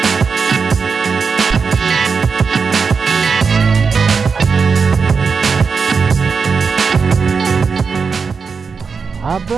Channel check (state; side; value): quieter; left; 5.3 dB